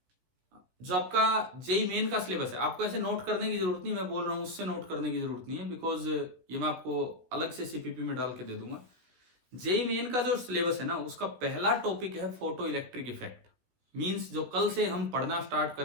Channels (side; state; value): left; late; 16 ms